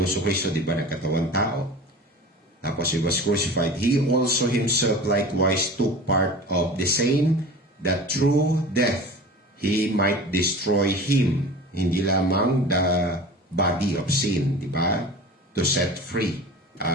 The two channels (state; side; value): normal; both; correlation 0.36